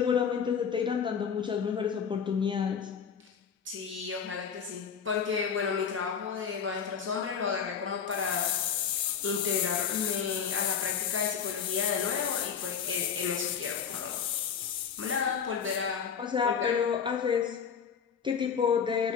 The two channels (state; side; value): quieter; right; 7.1 dB